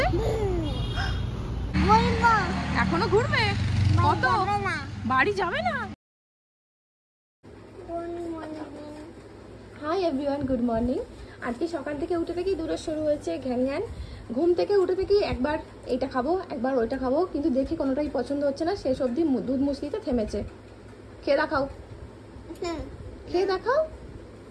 এখনো ঘুরবে? কত? বাড়ি যাবে না? Hi everyone, good morning. আজকে সকাল থেকে উঠে থেকেই দূরে শুরু হয়েছে ঘ্যান ঘ্যান। ঘুম থেকে উঠে থেকেই একবার এইটা খাবো, একবার ওইটা খাবো, কিন্তু দেখে কোনোটাই পছন্দ হচ্ছে না। শেষ অবধি দুধ মুসলিতে থেমেছে। খেয়ে দেখাও, খেয়ে দেখাও।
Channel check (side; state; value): both; identical; correlation 1.00